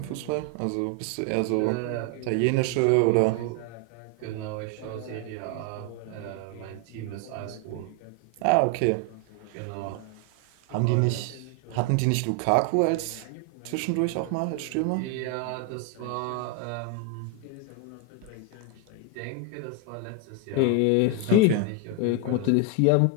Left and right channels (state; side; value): different; both; correlation 0.01